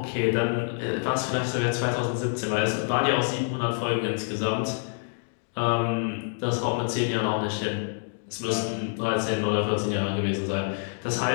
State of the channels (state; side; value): silent; right; digital silence